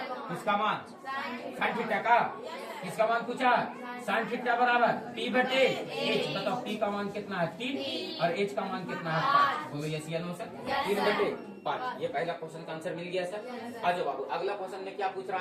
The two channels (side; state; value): both; identical; correlation 1.00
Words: किसका मान? साइन थीटा का। किसका मान पूछा? साइन थीटा बराबर P/H। बताओ P का मान कितना है? 3 और H का मान कितना है? 5। बोलो यस या नो सर? 3/5। ये पहला क्वेश्चन का आंसर मिल गया सर। आ जाओ बाबू, अगला क्वेश्चन में क्या पूछ